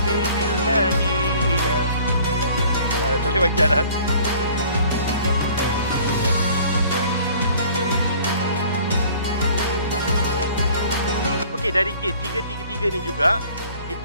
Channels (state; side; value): inverted; both; correlation -0.52